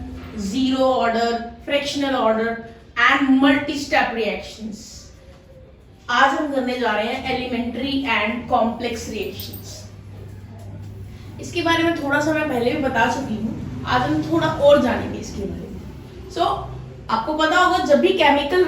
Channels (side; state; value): both; identical; correlation 1.00